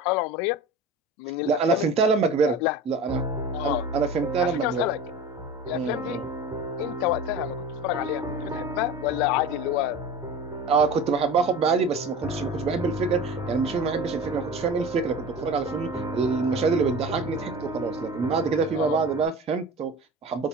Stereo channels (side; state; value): both; normal; correlation 0.35